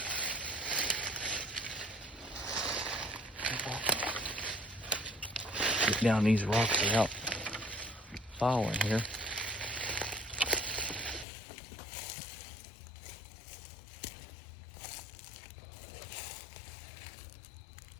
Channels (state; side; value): drops out; right; at 11.2 s